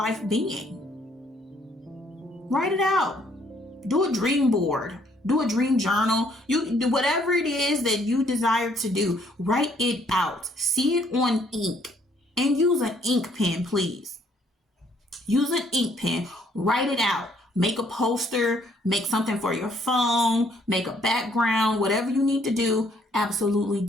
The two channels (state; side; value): normal; both; correlation 0.66